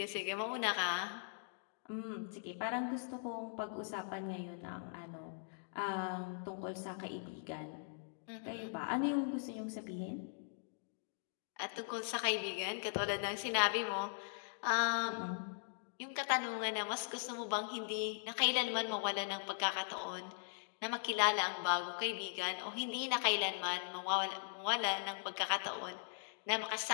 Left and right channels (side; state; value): right; silent; digital silence